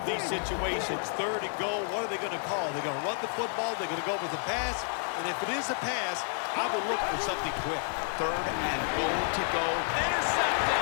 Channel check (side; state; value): right; silent; 58 dB below the other